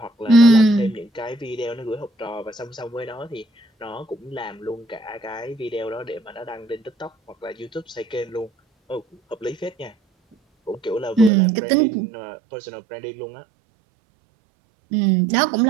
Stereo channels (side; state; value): left; drops out; at 11.3 s